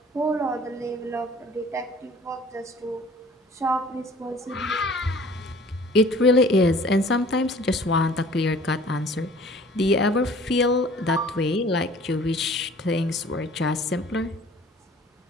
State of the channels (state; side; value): normal; both; correlation 0.50